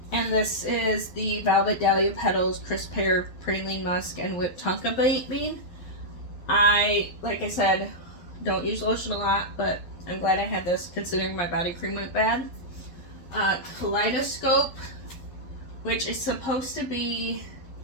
And this is the Velvet Dahlia Petals, Crisp Pear, Praline Musk, and Whipped Tonka Bean. Like I said, don't use lotion a lot, but I'm glad I had this considering my body cream went bad. Kaleidoscope, which is supposed to be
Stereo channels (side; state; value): right; late; 12 ms